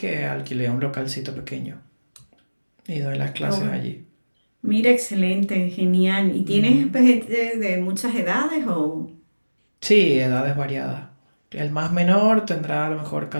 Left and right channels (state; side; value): inverted; both; correlation -1.00